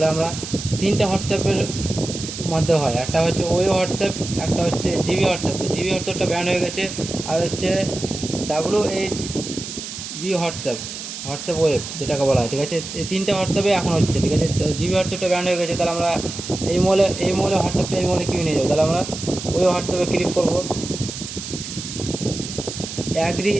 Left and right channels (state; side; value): noise; right; hiss, 9 dB below the sound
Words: আমরা 3টে হোয়াটসঅ্যাপের মধ্যে হয়, একটা হচ্ছে ওই হোয়াটসঅ্যাপ, একটা হচ্ছে জিবি হোয়াটসঅ্যাপ। তো জিবি হোয়াটসঅ্যাপটা ব্যান্ড হয়ে গেছে, আর হচ্ছে WHB হোয়াটসঅ্যাপ, হোয়াটসঅ্যাপ ওয়েব যেটাকে বলা হয়। ঠিক আছে, এই 3টে হোয়াটসঅ্যাপে এখন হচ্ছে। ঠিক আছে, তো জিবি হোয়াটসঅ্যাপটা ব্যান্ড হয়ে গেছে। তাহলে আমরা এই মোবাইলে হোয়াটসঅ্যাপটা এই মোবাইলে কিনে নিয়ে যাবো। তাহলে আমরা ওই হোয়াটসঅ্যাপে ক্লিক করবো, অ্যাগ্রি